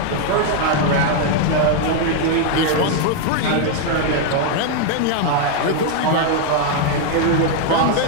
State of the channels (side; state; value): both; different; correlation 0.00